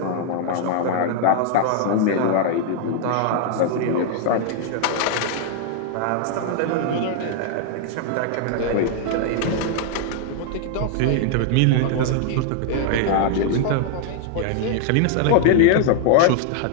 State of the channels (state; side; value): different; both; correlation 0.00